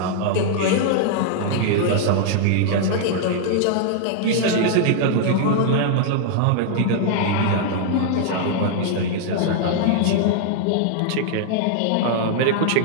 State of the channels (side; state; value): both; different; correlation 0.00